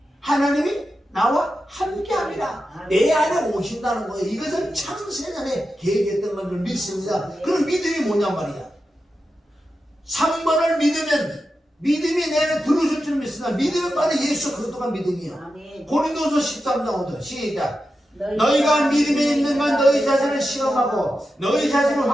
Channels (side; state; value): both; normal; correlation 0.90